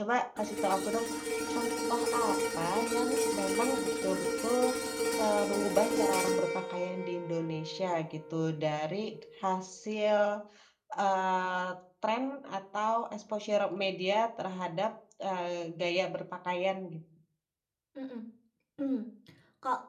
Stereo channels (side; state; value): both; identical; correlation 1.00